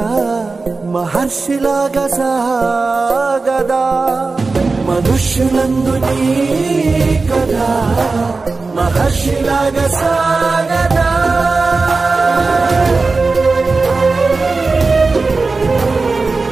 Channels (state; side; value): quieter; left; 3.9 dB